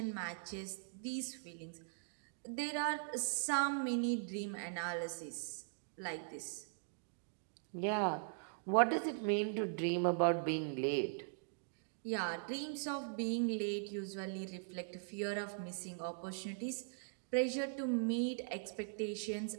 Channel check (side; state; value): left; silent; digital silence